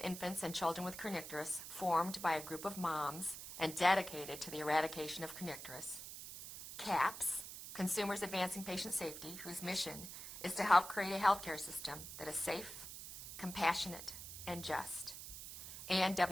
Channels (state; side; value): noise; right; hiss, 10 dB below the sound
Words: Infants and Children with Kernicterus, formed by a group of moms and dedicated to the eradication of kernicterus. CAPS, Consumers Advancing Patient Safety, whose mission is to help create a healthcare system that is safe, compassionate, and just. And